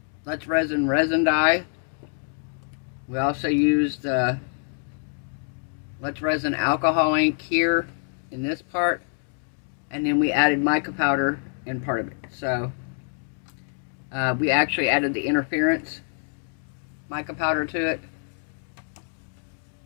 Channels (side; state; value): right; silent; 56 dB below the other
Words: Let's resin dye. We also used Let's Resin alcohol ink here in this part, and then we added mica powder in part of it. So we actually added the interference mica powder to it